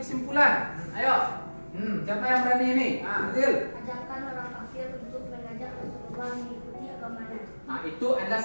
kesimpulan? Ayo. Siapa yang berani ini? Adil. Ajarkan orang kafir untuk mengajak Rasulullah mengikuti agamanya. Nah, itu adalah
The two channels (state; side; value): inverted; both; correlation -1.00